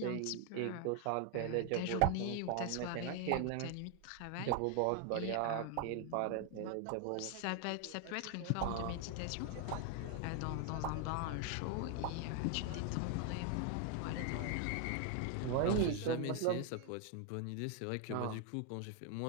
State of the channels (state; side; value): different; both; correlation 0.01